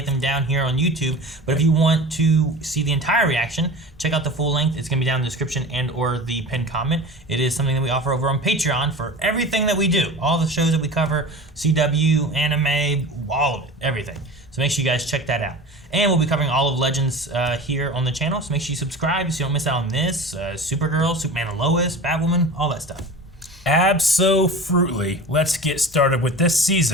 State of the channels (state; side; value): normal; both; correlation 0.34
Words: them down here on YouTube. But if you want to see the entire reaction, check out the full length. It's going to be down in the description and or the pinned comment. It is something that we offer over on Patreon for everything that we do. All the shows that we cover, CW, anime, all of it, everything. So make sure you guys check that out. And we'll be covering all of Legends here on the channel. So make sure you subscribe so you don't miss out on this. Supergirl, Superman and Lois, Batwoman, all that stuff. Abso-fruitly, let's get started with this